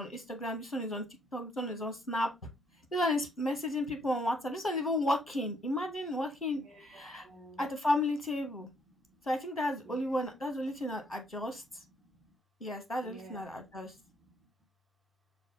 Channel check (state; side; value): normal; both; correlation 0.69